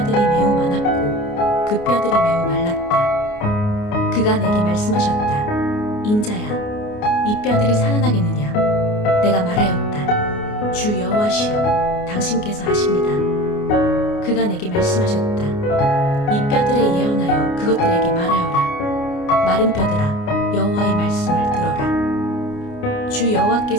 매우 많았고 그 뼈들이 매우 말랐다. 그가 내게 말씀하셨다. 인자야, 이 뼈들이 살아나겠느냐? 내가 말하였다. 주 여호와시여, 당신께서 아십니다. 그가 내게 말씀하셨다. 이 뼈들에 예언하여 그것들에게 말하여라. 마른 뼈들아, 여호와의 말씀을 들어라. 주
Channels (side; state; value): right; late; 29 ms